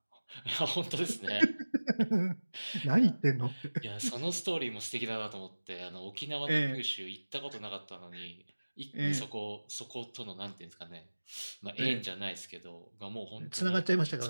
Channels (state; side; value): inverted; both; correlation -1.00